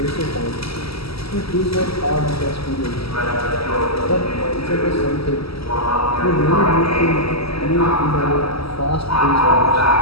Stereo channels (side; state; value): right; late; 0.76 ms